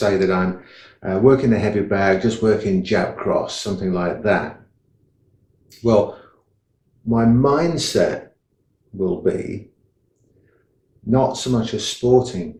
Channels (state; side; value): identical; both; correlation 1.00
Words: that I'm working the heavy bag, just working jab cross, something like that. Well, my mindset will be not so much a sporting